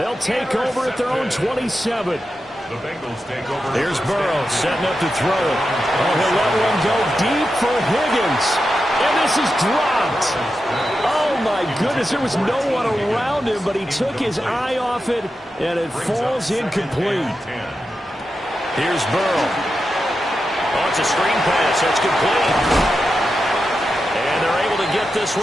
take over at their own 27. The Bengals take over. Here's Burrow setting up to throw it. Oh, he'll let one go deep for Higgins. And this is dropped. Oh, my goodness. There was no one around him, but he took his eye off it, and it falls incomplete. Here's Burrow. Oh, it's a screen pass. That's complete. And they're able to get this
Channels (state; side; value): normal; both; correlation 0.89